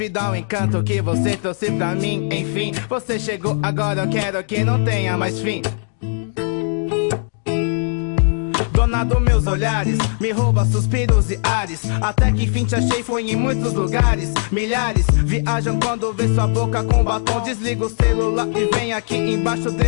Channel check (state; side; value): silent; right; 63 dB below the other